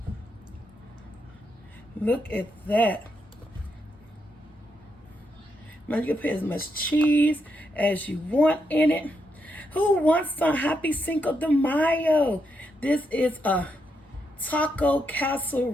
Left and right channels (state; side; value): normal; both; correlation 0.81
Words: Look at that. Now you can put as much cheese as you want in it. Who wants some? Happy Cinco de Mayo. This is a taco